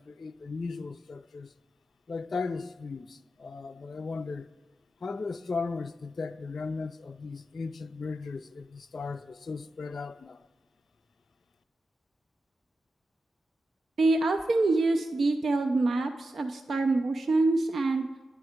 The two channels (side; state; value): both; normal; correlation 0.90